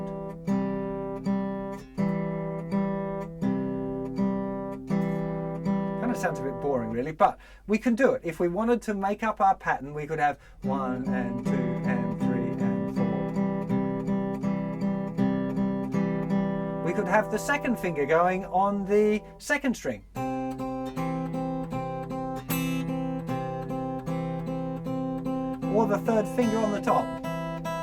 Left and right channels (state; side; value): identical; both; correlation 1.00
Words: Kind of sounds a bit boring really, but we can do it. If we wanted to make up our pattern, we could have 1 and 2 and 3 and 4. We could have the second finger going on the second string. Or the third finger on the top.